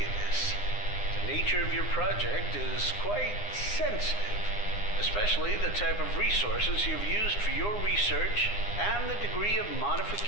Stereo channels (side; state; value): right; late; 9.8 ms